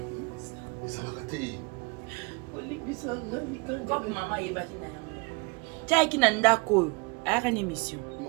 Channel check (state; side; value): quieter; left; 30.5 dB